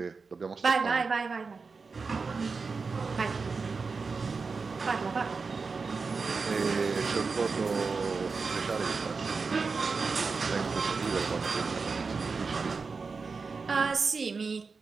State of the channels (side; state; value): left; quieter; 4.6 dB